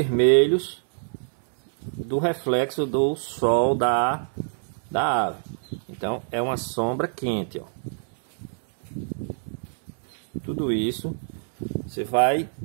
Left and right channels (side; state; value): left; silent; 61 dB below the other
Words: do reflexo do sol da ave. Então é uma sombra quente, ó. Tudo isso você vai